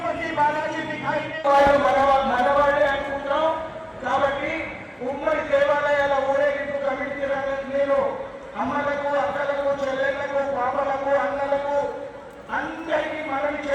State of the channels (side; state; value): both; identical; correlation 1.00